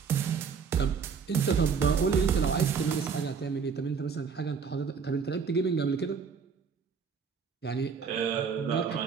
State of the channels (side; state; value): left; quieter; 6.0 dB